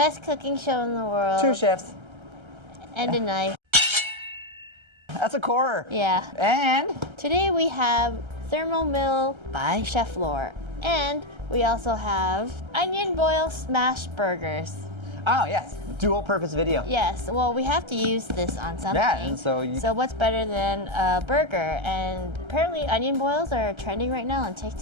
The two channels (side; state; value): left; late; 1.3 ms